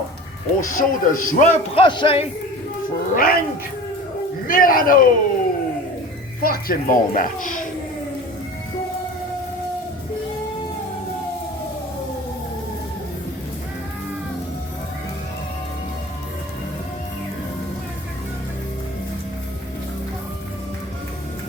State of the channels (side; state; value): both; normal; correlation 0.38